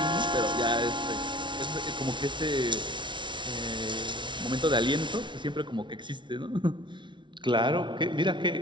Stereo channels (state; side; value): late; left; 0.24 ms